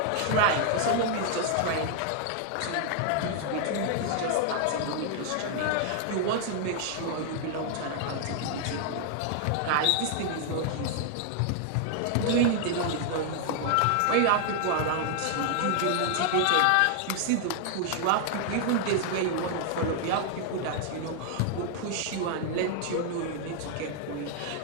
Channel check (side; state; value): both; different; correlation 0.00